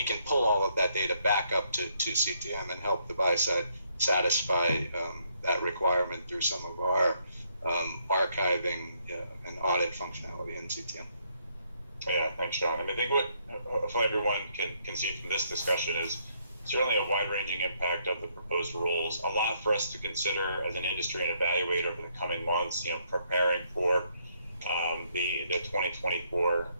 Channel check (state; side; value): inverted; both; correlation -0.72